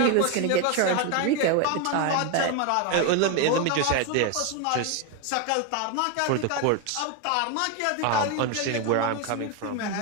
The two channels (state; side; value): different; both; correlation 0.01